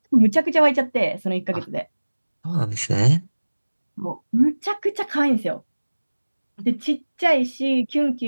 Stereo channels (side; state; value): both; inverted; correlation -1.00